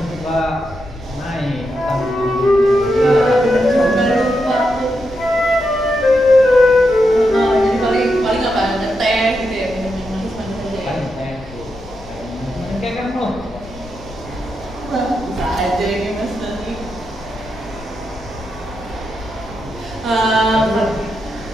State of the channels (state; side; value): noise; left; rumble, 18 dB below the sound